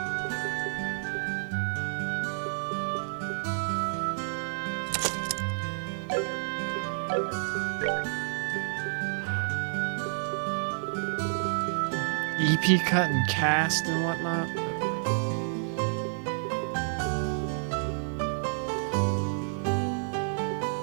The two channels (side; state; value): left; silent; digital silence